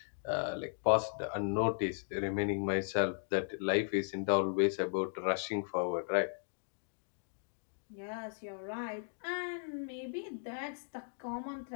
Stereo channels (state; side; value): silent; right; digital silence